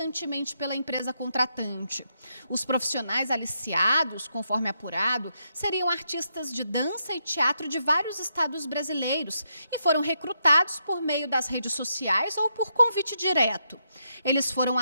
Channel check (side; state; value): both; inverted; correlation -0.80